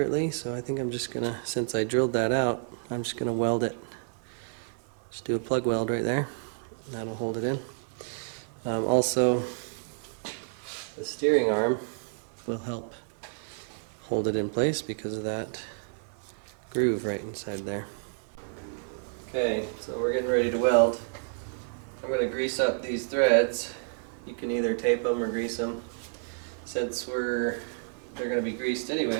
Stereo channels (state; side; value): silent; left; digital silence